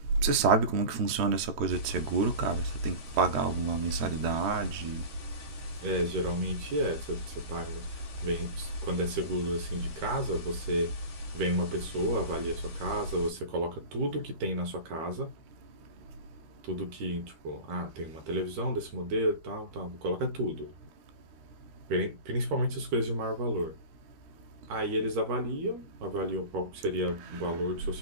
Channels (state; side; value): late; left; 13 ms